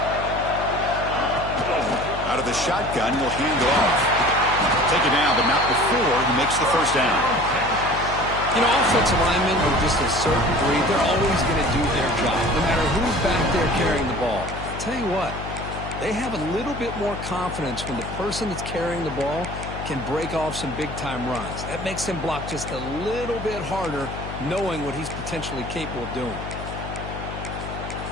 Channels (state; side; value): noise; left; hum, 8 dB below the sound